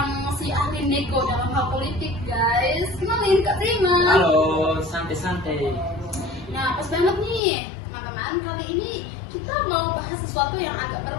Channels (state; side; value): drops out; right; at 7.4 s